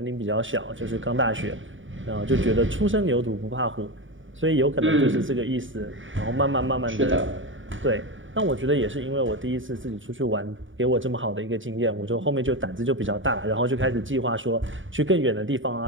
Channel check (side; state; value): left; late; 0.57 ms